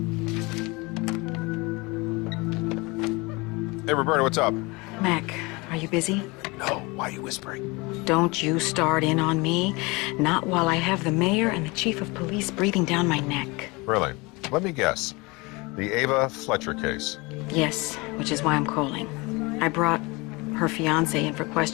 Hey, Roberta, what's up? Mac, are you busy? No, why are you whispering? Don't you start in on me. Not while I have the mayor and the chief of police breathing down my neck. Really? Let me guess. The Ava Fletcher case. Yes, which is why I'm calling. I brought her fiancé in for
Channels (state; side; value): quieter; right; 25.4 dB